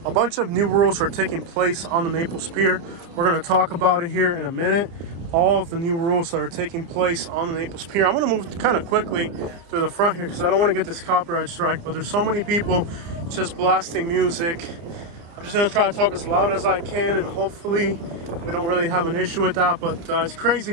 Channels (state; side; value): late; left; 29 ms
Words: A bunch of new rules are taking place on the Naples Pier. We're going to talk about it here in a minute. All of the new rules that are taking place on the Naples Pier. I'm going to move kind of quickly through the front here because I don't want to get this copyright strike, but there's so many people just blasting music. I'm just going to try to talk as loud as I can, and hopefully we don't really have an issue with that. But it's crazy